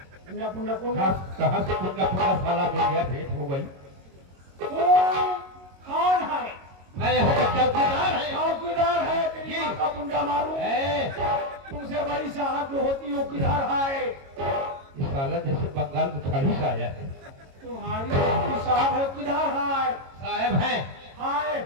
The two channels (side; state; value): left; late; 22 ms